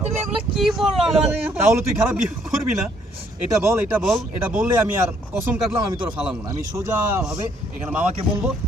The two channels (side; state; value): both; normal; correlation 0.67